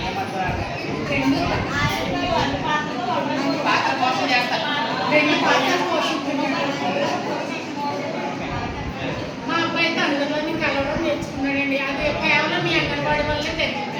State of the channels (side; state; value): both; identical; correlation 1.00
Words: పాత్ర కోసం చేస్తారు. మా అబ్బాయి అయితే అందులోని కలవడం నేర్చుకున్నాడండి. అది కేవలం మీ అంగన్వాడీ వల్లే తెలిసింది.